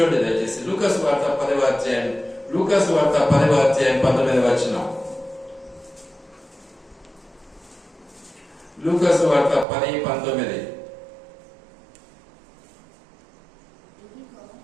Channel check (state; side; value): drops out; left; at 9.7 s